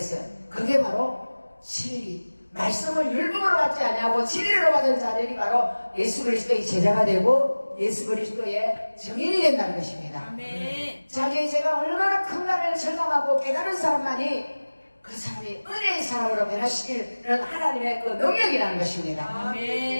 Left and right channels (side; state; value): both; inverted; correlation -1.00